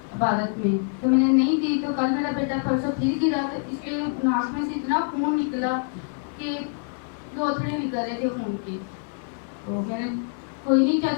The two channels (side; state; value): right; silent; 61 dB below the other